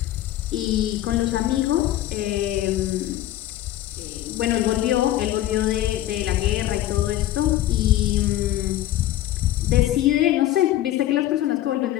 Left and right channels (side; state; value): right; quieter; 14.0 dB